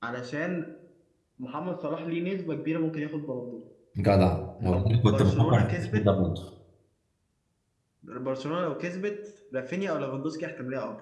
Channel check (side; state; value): both; identical; correlation 1.00